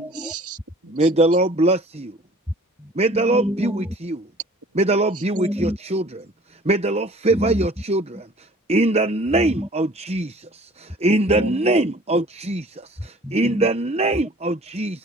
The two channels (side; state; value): both; normal; correlation 0.50